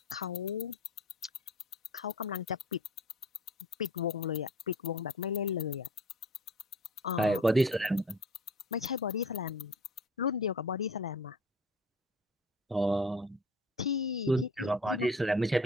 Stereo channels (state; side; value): normal; both; correlation 0.43